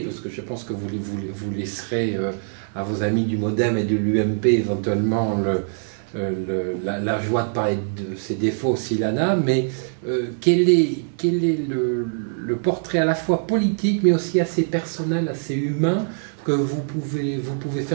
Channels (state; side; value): silent; left; digital silence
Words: Parce que je pense que vous laisserez à vos amis du MoDem et de l'UMP éventuellement la joie de parler de ses défauts s'il en a, mais quel est le portrait à la fois politique mais aussi assez personnel, assez humain que vous pouvez